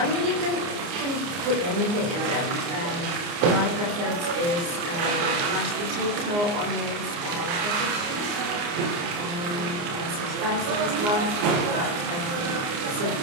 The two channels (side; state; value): left; late; 29 ms